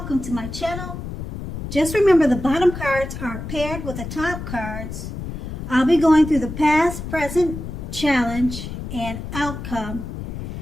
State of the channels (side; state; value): left; noise; rumble, 8 dB below the sound